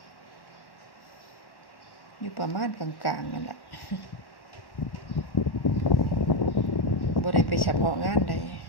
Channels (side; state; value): right; late; 1.1 ms